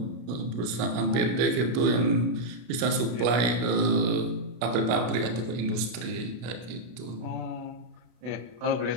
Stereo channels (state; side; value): late; left; 32 ms